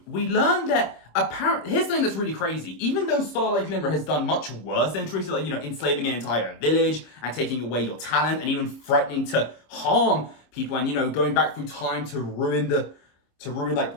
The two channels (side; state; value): right; late; 26 ms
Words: We learned that apparently, here's something that's really crazy. Even though Starlight Glimmer has done much worse than Trixie, like, enslaving an entire village and taking away your talent and even threatening to harm people and, going back through time to ruin like